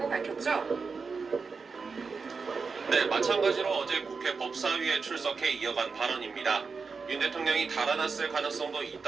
밝혔죠. 네, 마찬가지로 어제 국회 법사위에 출석해 이어간 발언입니다. 윤 대통령이 달아났을 가능성도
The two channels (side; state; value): left; quieter; 4.9 dB